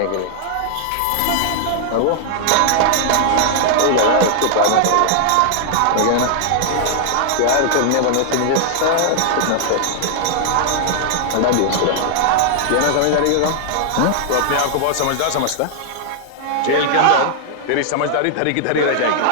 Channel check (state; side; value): different; both; correlation -0.01